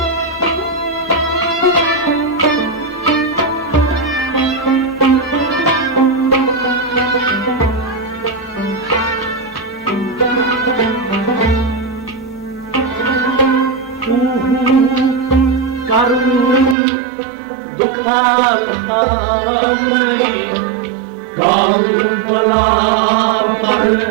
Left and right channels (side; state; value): left; drops out; at 16.8 s